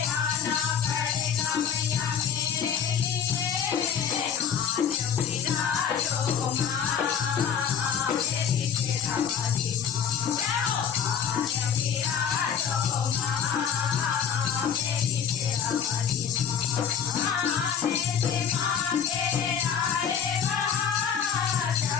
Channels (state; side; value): quieter; right; 7.9 dB